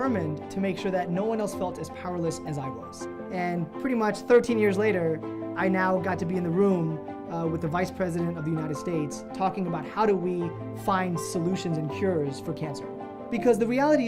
to make sure that no one else felt as powerless as I was. And pretty much 13 years later, I now got to be in the room with the Vice President of the United States talking about how do we find solutions and cures for cancer. Because the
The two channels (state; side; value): identical; both; correlation 1.00